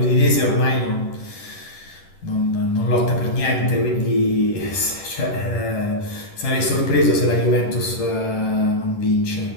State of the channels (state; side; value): late; right; 10 ms